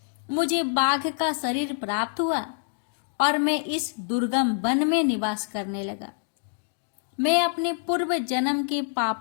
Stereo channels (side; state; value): right; silent; digital silence